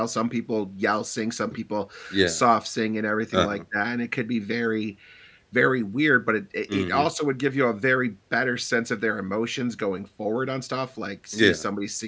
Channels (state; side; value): identical; both; correlation 1.00